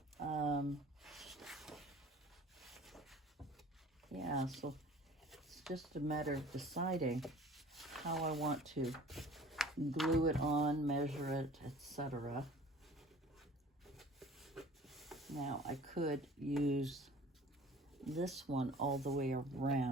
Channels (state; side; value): normal; both; correlation 0.47